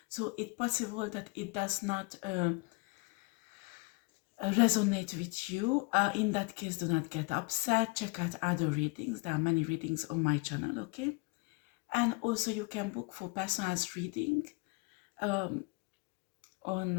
so it's possible that it does not resonate with you. In that case, do not get upset. Check out other readings. There are many readings on my channel, okay? And also you can book for personalized reading on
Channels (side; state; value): right; quieter; 27.7 dB